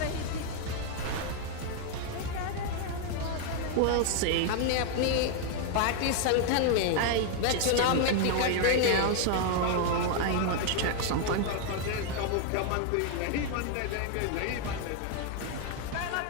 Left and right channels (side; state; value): both; different; correlation 0.00